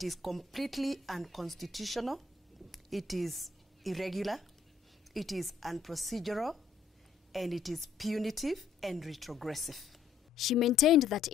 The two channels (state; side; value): quieter; right; 5.1 dB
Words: is completely unconstitutional, it is irregular, it is unprocedural, and it is punitive and retrogressive. She maintained that